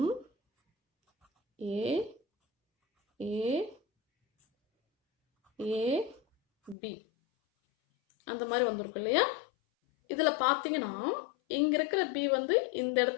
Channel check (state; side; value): drops out; right; at 6.8 s